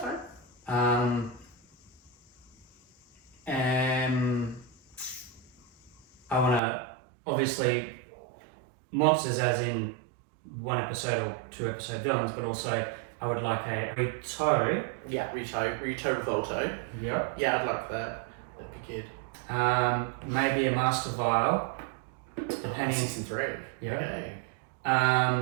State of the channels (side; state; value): left; drops out; at 6.6 s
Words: I want to obviously monsters, as in 1 episode or 2 episode villains, but also I would like a Rito. Yeah, Rito Revolto. Yep. Yeah, I'd like that. That'd be good. Maybe a Master Vial, depending. Season 3. Yeah. Okay.